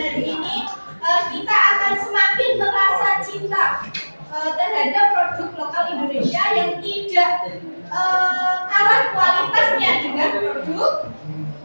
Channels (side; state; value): both; inverted; correlation -1.00